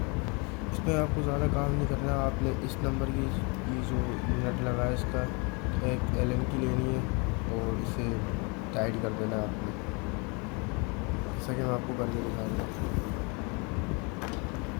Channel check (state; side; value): quieter; right; 31.4 dB